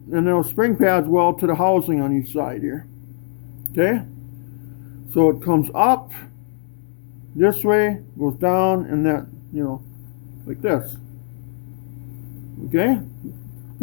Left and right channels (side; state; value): right; silent; 65 dB below the other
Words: and those spring pads weld to the housing on each side here. Okay, so it comes up this way, goes down, and that, like this. Okay,